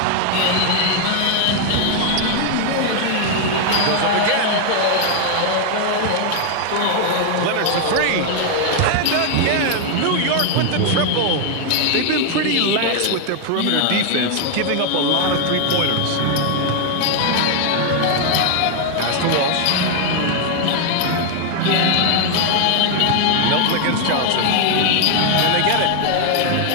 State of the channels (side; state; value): both; different; correlation 0.00